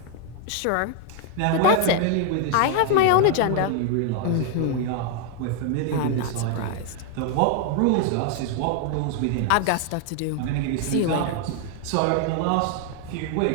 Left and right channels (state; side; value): different; both; correlation 0.00